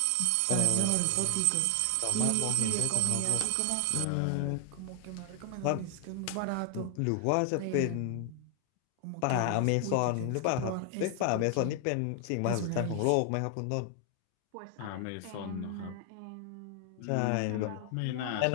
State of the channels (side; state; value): both; different; correlation 0.00